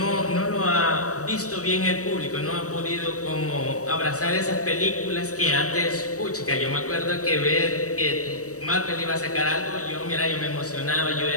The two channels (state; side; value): late; right; 0.66 ms